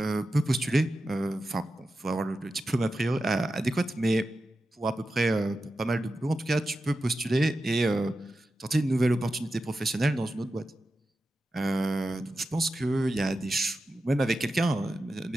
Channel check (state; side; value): normal; both; correlation 0.91